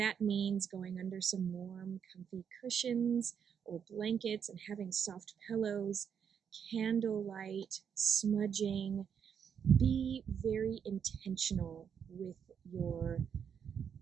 means going under some warm, comfy cushions or blankets and having soft pillows, candlelight, smudging, be very intentional with your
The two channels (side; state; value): left; quieter; 7.6 dB